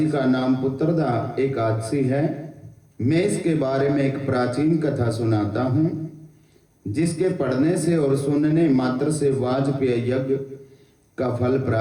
का नाम पुत्रदा एकादशी है। मैं इसके बारे में एक प्राचीन कथा सुनाता हूँ जिसके पढ़ने से और सुनने मात्र से वाजपेय यज्ञ का फल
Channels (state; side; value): identical; both; correlation 1.00